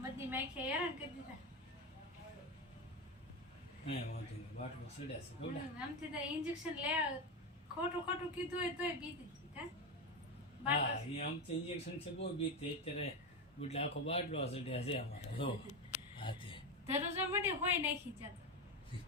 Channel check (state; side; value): normal; both; correlation 0.15